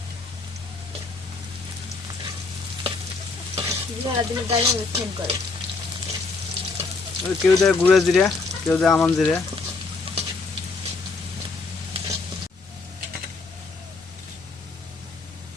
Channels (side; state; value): right; quieter; 4.0 dB